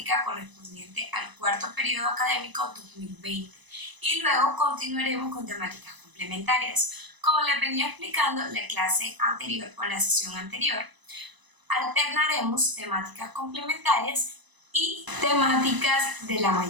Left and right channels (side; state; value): left; late; 1.0 ms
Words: correspondiente al cuarto periodo académico 2020 y luego continuaremos con temáticas complementarias. Como les venía explicando en la clase anterior o en la sesión anterior, alternaremos temáticas complementarias y temáticas de la